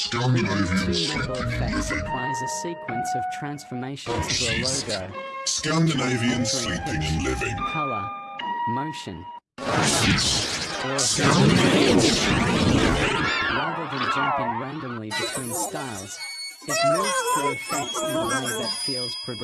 2MABAL sleeping effects and living. applies a sequence of transformations to a Jysk. logo, Scandinavian sleeping and living. color, motion, Jysk. or Scandinavian sleeping and living. rather than jumping randomly between styles, it moves through effects in a way that feels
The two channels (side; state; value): both; identical; correlation 1.00